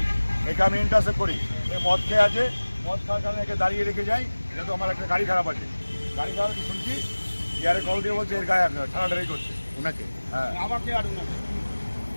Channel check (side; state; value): both; inverted; correlation -1.00